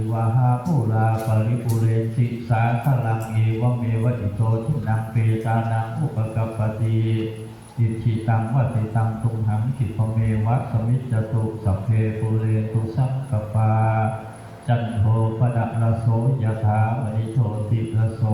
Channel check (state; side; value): identical; both; correlation 1.00